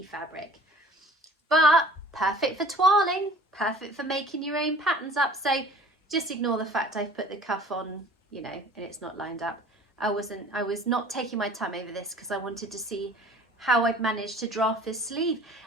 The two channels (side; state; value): both; normal; correlation 0.48